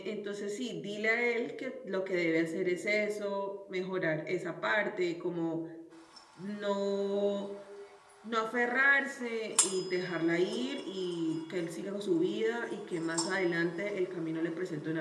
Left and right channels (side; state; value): both; identical; correlation 1.00